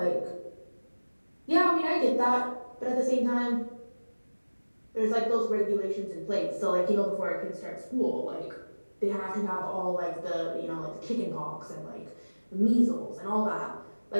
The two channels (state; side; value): inverted; both; correlation -1.00